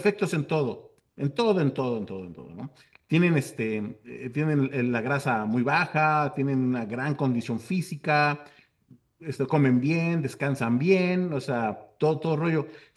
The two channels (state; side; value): identical; both; correlation 1.00